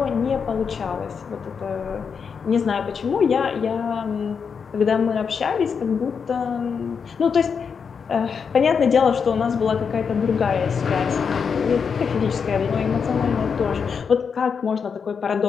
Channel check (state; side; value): quieter; right; 6.2 dB